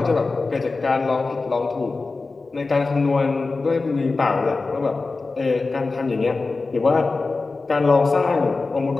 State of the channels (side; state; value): right; quieter; 3.8 dB